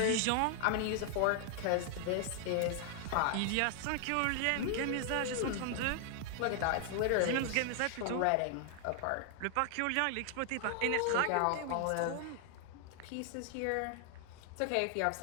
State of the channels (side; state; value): both; different; correlation 0.00